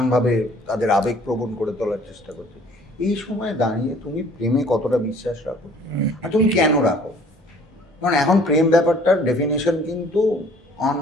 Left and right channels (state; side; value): normal; both; correlation 0.55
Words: তাদের আবেগ প্রবণ করে তোলার চেষ্টা করছে, এই সময় দাঁড়িয়ে তুমি প্রেমে কতটা বিশ্বাস রাখো, আর তুমি কেন রাখো? কারণ এখন প্রেম ব্যাপারটার ডেফিনেশন কিন্তু অন